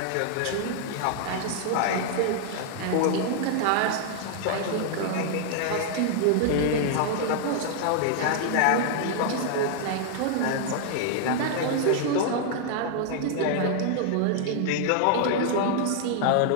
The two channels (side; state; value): both; different; correlation 0.00